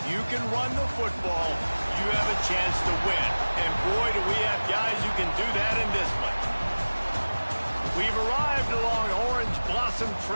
you can run the football, you have a chance to win. And boy, do we have guys who can do that in this one. We've arrived along Orange Blossom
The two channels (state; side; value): inverted; both; correlation -1.00